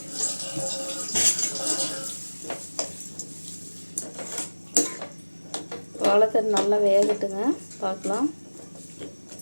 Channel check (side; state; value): both; inverted; correlation -1.00